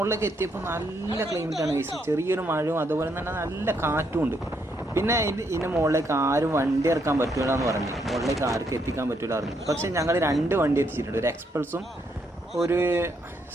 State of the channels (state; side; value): normal; both; correlation 0.75